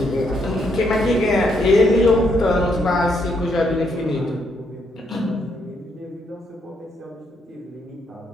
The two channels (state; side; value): normal; both; correlation 0.75